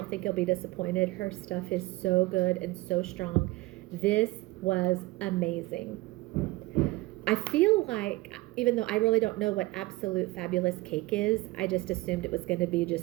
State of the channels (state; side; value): quieter; left; 20.6 dB